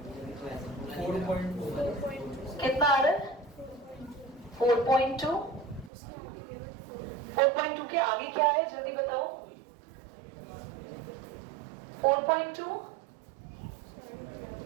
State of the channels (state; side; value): drops out; left; at 5.9 s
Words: 4.2। कितना आ रहा है? 4.2। 4.2 के आगे क्या है जल्दी बताओ? 4.2